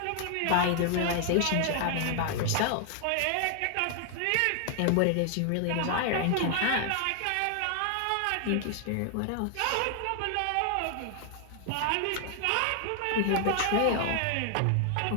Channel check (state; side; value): different; both; correlation 0.00